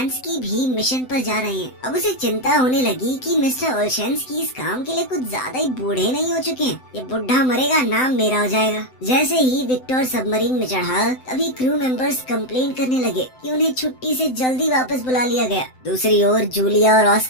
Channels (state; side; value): late; right; 7.8 ms